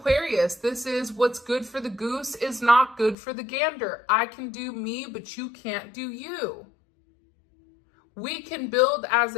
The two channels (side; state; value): right; drops out; at 3.2 s